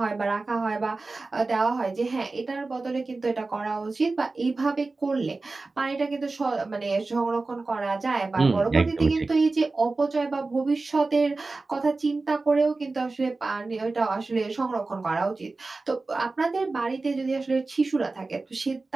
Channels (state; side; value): quieter; left; 3.6 dB